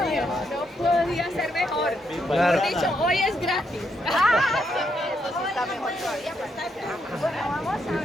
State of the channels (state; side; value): normal; both; correlation 0.78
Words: mío, no podía ser mejor. Claro. Mejor dicho, hoy es gratis. ¡Ah! Eso sí está mejor todavía. Bueno, vamos a